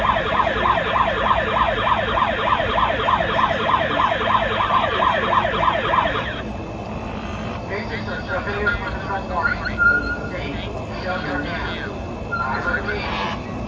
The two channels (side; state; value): both; identical; correlation 1.00